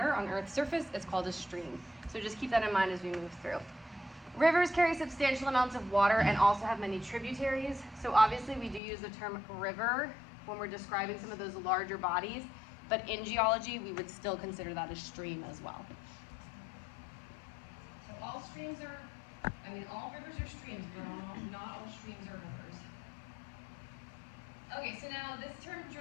on Earth's surface, it's called a stream. So just keep that in mind as we move through. Rivers carry substantial amounts of water and also have many tributaries. So obviously we do use the term river when we're describing some of those larger bodies, but in geology we would still consider that a stream as well. So all streams are, all rivers are streams, but not all streams are rivers. Okay, so now this term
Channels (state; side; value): drops out; right; at 8.8 s